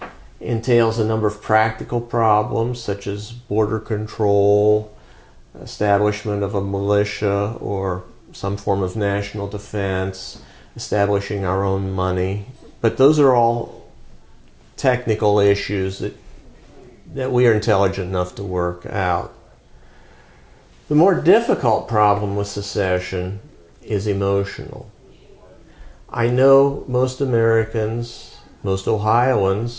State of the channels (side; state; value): both; identical; correlation 1.00